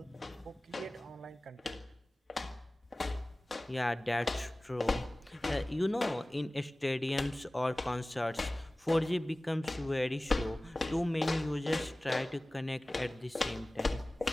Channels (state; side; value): normal; both; correlation 0.98